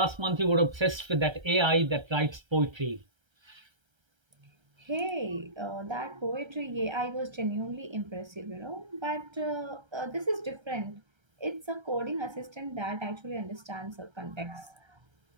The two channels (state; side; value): late; left; 1.3 ms